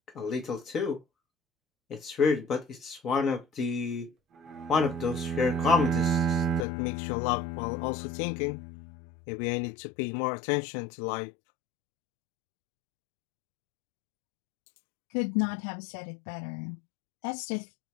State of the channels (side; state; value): right; drops out; at 6.7 s